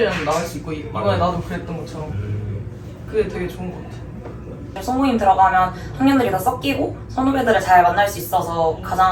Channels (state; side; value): identical; both; correlation 1.00